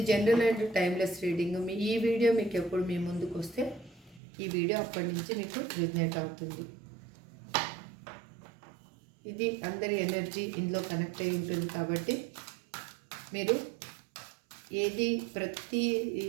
జనరల్ అండ్ టైమ్లెస్ రీడింగ్. ఈ వీడియో మీకు ఎప్పుడు మీ ముందుకు వస్తే ఈ వీడియో అప్పటి నుంచి మీకు రిజనేట్ అవుతుంది. ఇది అందరి ఎనర్జీ ఇందులో కనెక్ట్ అయి ఉంటుంది కాబట్టి మీరు ఏది ప్రతి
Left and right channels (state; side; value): drops out; left; at 4.2 s